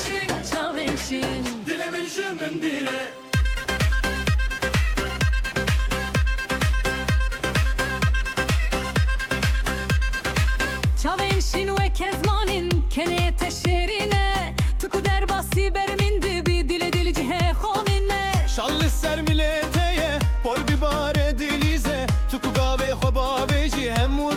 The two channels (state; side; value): identical; both; correlation 1.00